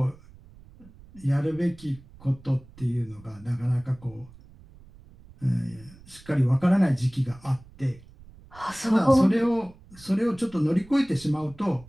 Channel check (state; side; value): noise; right; rumble, 23 dB below the sound